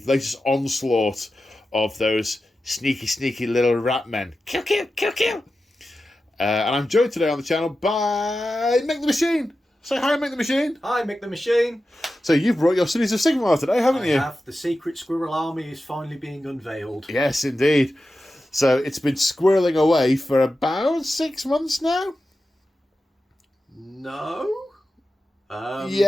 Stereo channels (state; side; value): normal; both; correlation 0.92